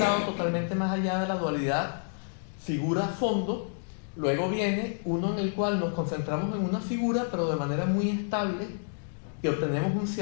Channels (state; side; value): silent; right; digital silence